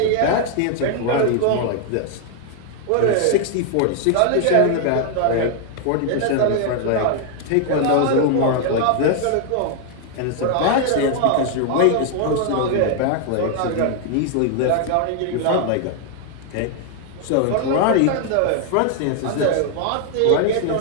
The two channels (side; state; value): both; different; correlation 0.00